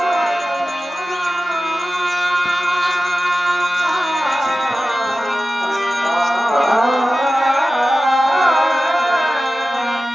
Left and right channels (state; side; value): normal; both; correlation 0.95